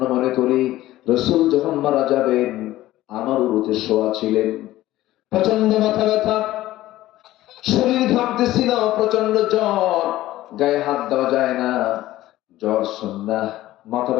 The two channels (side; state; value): right; quieter; 15.5 dB